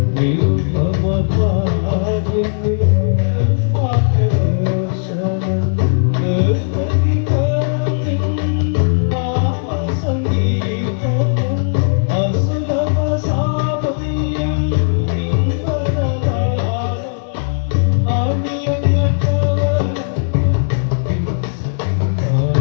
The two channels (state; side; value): silent; right; 61 dB below the other